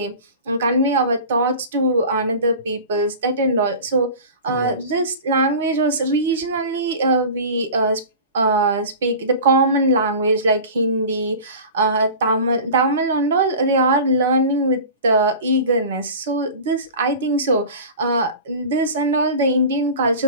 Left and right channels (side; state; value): both; inverted; correlation -0.36